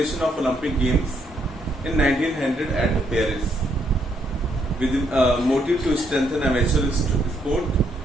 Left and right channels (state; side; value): normal; both; correlation 0.73